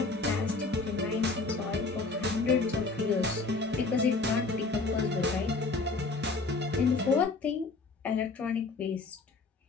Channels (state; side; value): quieter; right; 3.8 dB